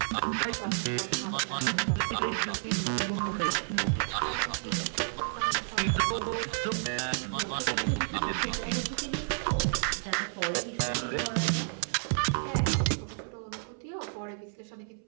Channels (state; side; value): silent; left; 57 dB below the other